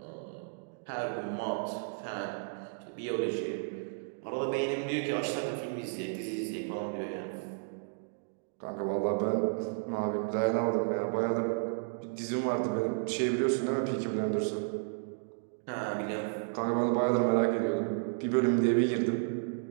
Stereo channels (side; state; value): left; silent; digital silence